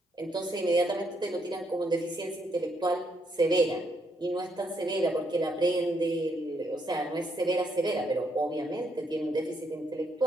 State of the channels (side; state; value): both; normal; correlation 0.74